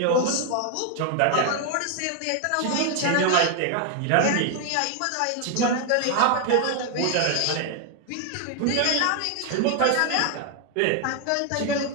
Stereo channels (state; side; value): different; both; correlation 0.00